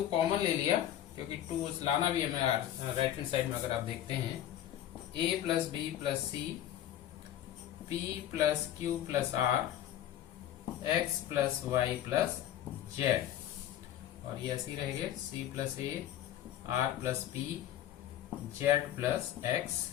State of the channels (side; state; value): right; quieter; 11.7 dB